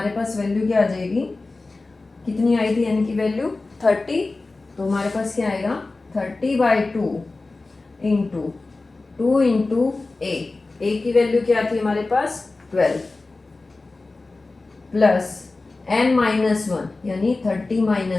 पास वैल्यू क्या आ जाएगी, कितनी आई थी n की वैल्यू 30, तो हमारे पास क्या आएगा 30 बाई 2 इंटू 2 इंटू a ए की वैल्यू क्या थी हमारे पास 12 प्लस n माइनस वन यानी 30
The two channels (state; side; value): quieter; right; 3.4 dB